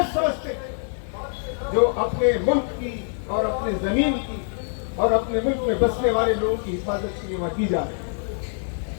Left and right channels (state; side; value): silent; right; 62 dB below the other